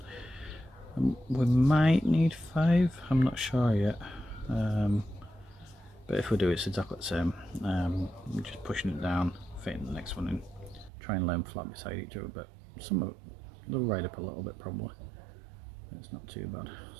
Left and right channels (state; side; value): drops out; left; at 10.9 s